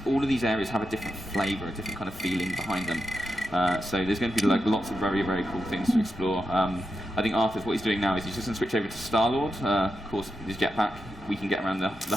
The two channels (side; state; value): both; normal; correlation 0.88